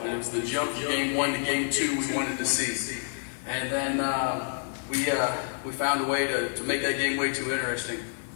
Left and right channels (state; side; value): silent; right; 59 dB below the other